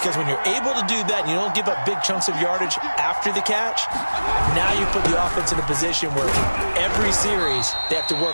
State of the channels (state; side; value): inverted; both; correlation -1.00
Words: when you're able to do that and you don't give up big chunks of yardage after the catch, now you put the offense in a position where every series they have to